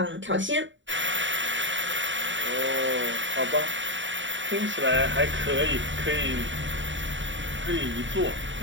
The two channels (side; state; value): left; late; 0.55 ms